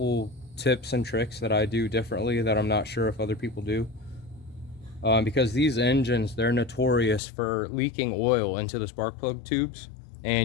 tips and tricks that I do differently that I'm not sure if other people do. Because these engines, they're notorious for leaking oil into the spark plug tubes,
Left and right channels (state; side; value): drops out; right; at 7.2 s